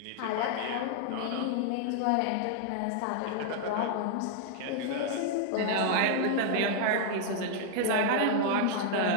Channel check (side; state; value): both; different; correlation -0.01